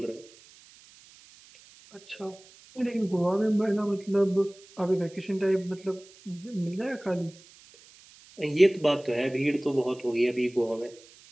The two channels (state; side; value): noise; right; hiss, 24 dB below the sound